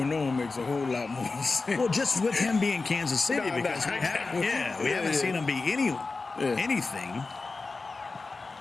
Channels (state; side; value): quieter; right; 3.9 dB